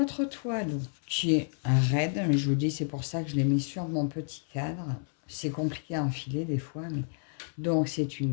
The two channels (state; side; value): silent; right; 58 dB below the other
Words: toile qui est raide, mais je vous dis, c'est pour ça que je l'ai mis sur mon petit cadre. C'est compliqué à enfiler des fois, mais... Donc, c'est